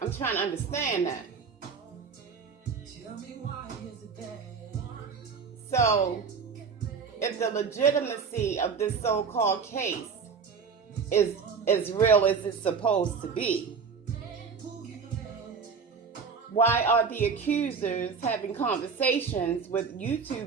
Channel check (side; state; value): left; quieter; 5.7 dB